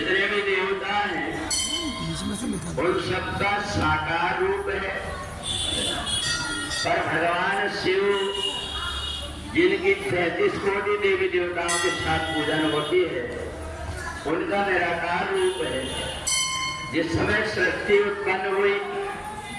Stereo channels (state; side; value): identical; both; correlation 1.00